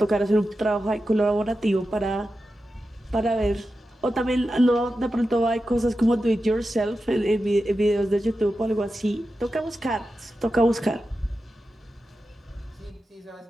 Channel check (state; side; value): normal; both; correlation 0.91